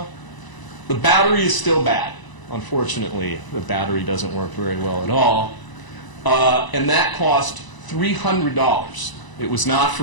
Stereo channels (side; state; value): right; late; 1.0 ms